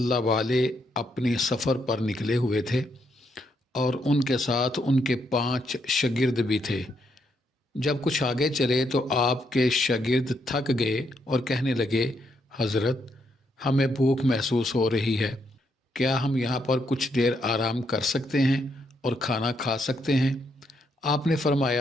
वाले अपने सफ़र पर निकले हुए थे और उनके साथ उनके 5 शागिर्द भी थे। जब कुछ आगे चले तो आपके शागिर्द थक गए और कहने लगे, हज़रत, हमें भूख महसूस हो रही है, क्या हम यहाँ पर कुछ देर आराम कर सकते हैं और खाना खा सकते हैं? आपने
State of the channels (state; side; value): normal; both; correlation 0.77